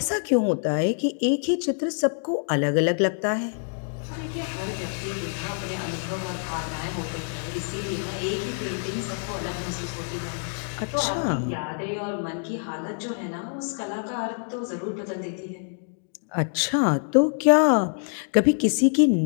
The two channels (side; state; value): right; silent; 57 dB below the other